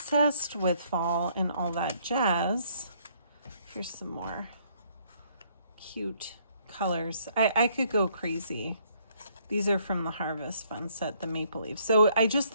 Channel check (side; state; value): both; inverted; correlation -0.66